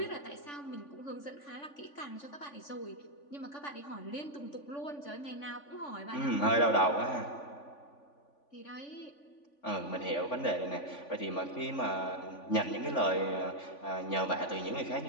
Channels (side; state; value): right; late; 3.5 ms